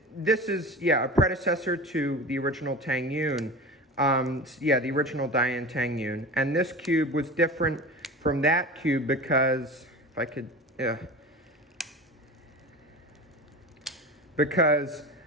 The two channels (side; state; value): both; normal; correlation 0.32